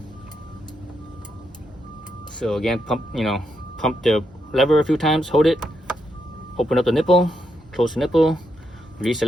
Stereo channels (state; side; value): normal; both; correlation 0.81